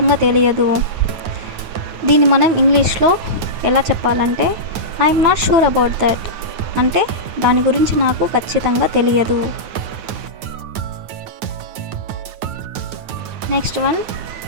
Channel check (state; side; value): late; left; 9.4 ms